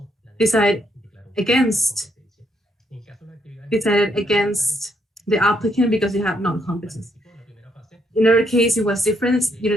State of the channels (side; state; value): both; normal; correlation 0.74